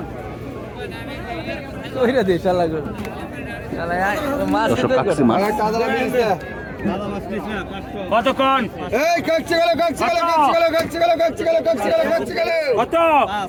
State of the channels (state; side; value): identical; both; correlation 1.00